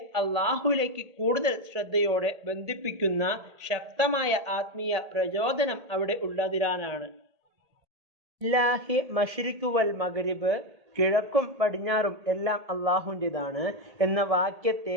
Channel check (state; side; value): late; left; 1.8 ms